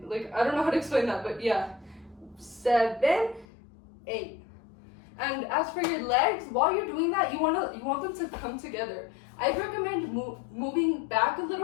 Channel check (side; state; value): right; drops out; at 3.5 s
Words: Like, I don't know how to explain that, but yeah. 7, 8. And as for your legs, while you're doing that, you want them to come together. I'd recommend moving back a